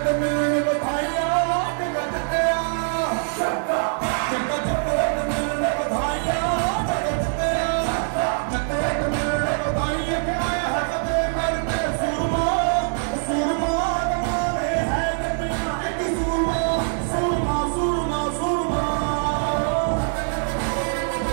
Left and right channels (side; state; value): left; silent; 63 dB below the other